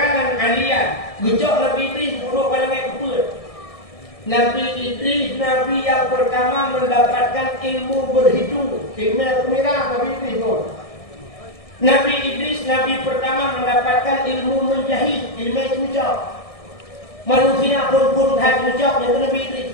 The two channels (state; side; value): late; right; 1.6 ms